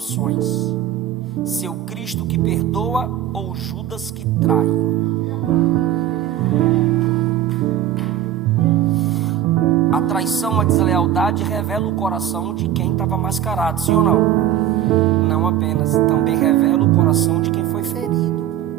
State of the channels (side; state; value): left; quieter; 11.3 dB